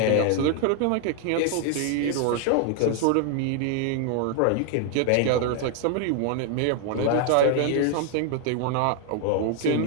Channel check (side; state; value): both; different; correlation 0.00